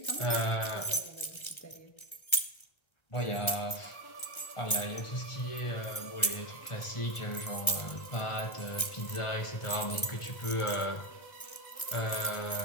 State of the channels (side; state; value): right; late; 1.3 ms